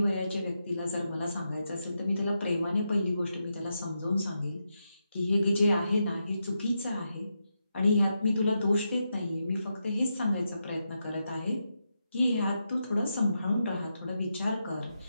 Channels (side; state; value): both; inverted; correlation -0.85